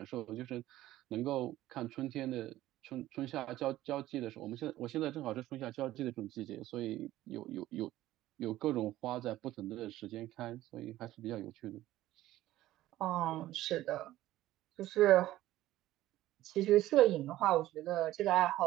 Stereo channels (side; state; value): left; quieter; 15.1 dB